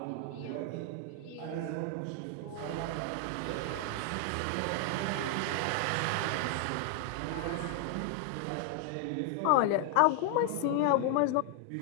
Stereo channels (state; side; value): different; both; correlation 0.00